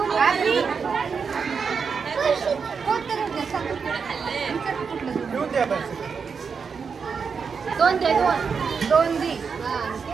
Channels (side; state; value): left; quieter; 5.8 dB